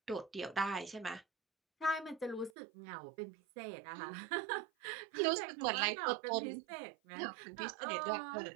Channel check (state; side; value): drops out; left; at 2.5 s